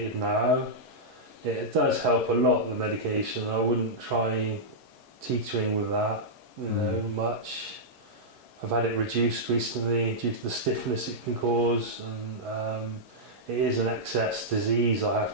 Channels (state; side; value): late; left; 11 ms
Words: now. It does help a lot, the medication. I wouldn't try teetering with that, much. I've had it reduced recently due to the stiffness it can cause, and it is an excess disease I